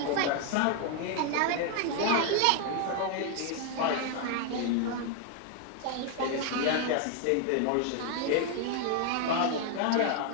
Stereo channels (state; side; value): different; both; correlation 0.00